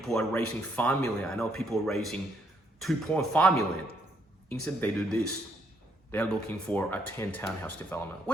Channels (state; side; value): normal; both; correlation 0.72